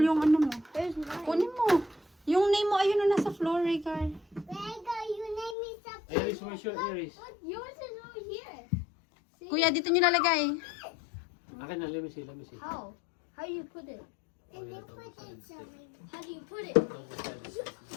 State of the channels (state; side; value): drops out; right; at 5.6 s